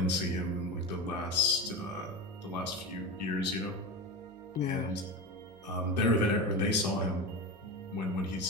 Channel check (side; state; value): both; normal; correlation 0.22